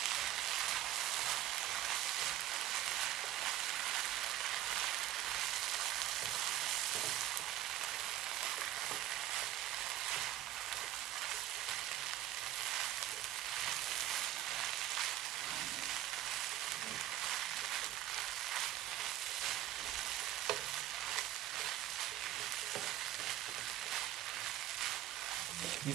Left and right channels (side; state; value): left; quieter; 13.3 dB